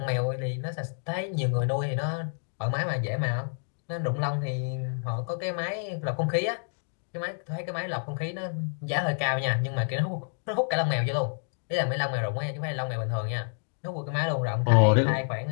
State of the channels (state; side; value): silent; right; digital silence